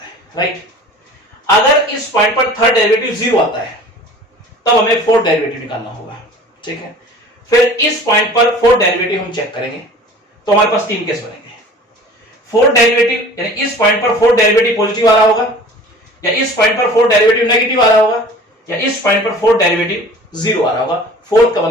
है, राइट। अगर इस पॉइंट पर थर्ड डेरिवेटिव 0 आता है तब हमें फोर्थ डेरिवेटिव निकालना होगा, ठीक है। फिर इस पॉइंट पर फोर्थ डेरिवेटिव हम चेक करेंगे, तो हमारे पास 3 केस बनेंगे। फोर्थ डेरिवेटिव यानी इस पॉइंट पर फोर्थ डेरिवेटिव पॉजिटिव आ रहा होगा, या इस पॉइंट पर फोर्थ डेरिवेटिव नेगेटिव आ रहा होगा, या इस पॉइंट पर फोर्थ डेरिवेटिव 0 आ रहा होगा। फोर्थ का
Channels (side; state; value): both; normal; correlation 0.44